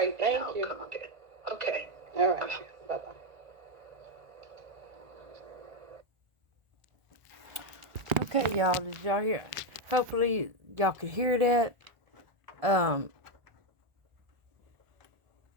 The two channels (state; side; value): late; left; 1.5 ms